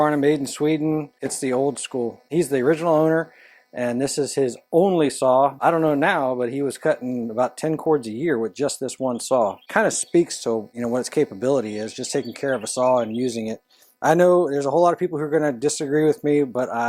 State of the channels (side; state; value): both; identical; correlation 1.00